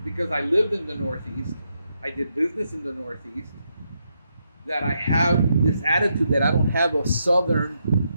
because I lived in the Northeast, I did business in the Northeast, that I have this attitude that I don't have a Southern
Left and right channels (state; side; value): inverted; both; correlation -0.81